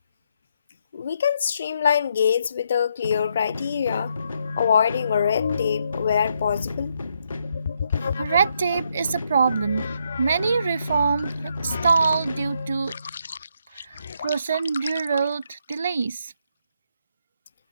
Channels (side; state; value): both; inverted; correlation -0.76